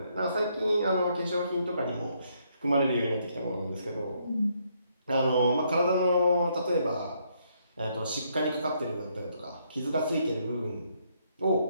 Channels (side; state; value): both; inverted; correlation -0.73